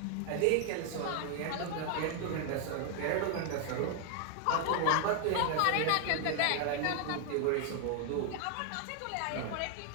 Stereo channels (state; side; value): different; both; correlation 0.00